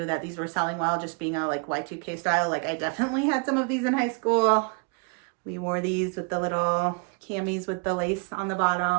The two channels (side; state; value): left; quieter; 34.5 dB